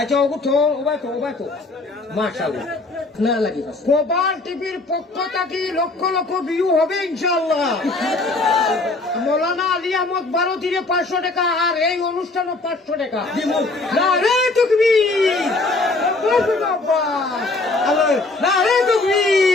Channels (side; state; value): right; quieter; 3.3 dB